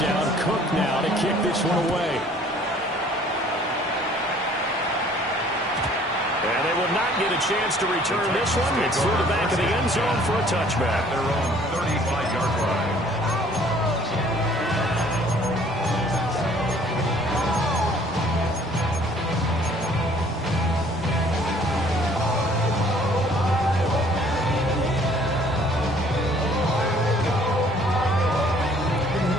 Cook now to kick this one away. And they will not get a chance to return this one. It's through the back of the end zone for a touchback. Their own 35-yard line.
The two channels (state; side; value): normal; both; correlation 0.57